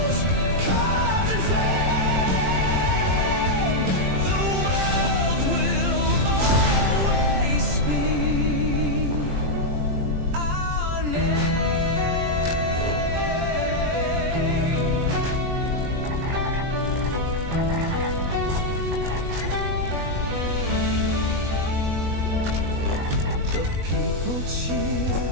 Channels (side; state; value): left; late; 21 ms